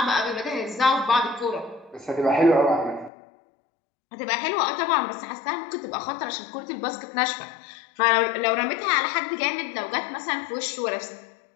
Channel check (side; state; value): right; drops out; at 3.1 s